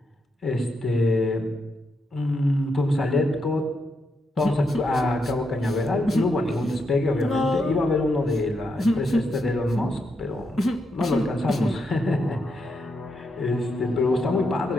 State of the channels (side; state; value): both; normal; correlation 0.81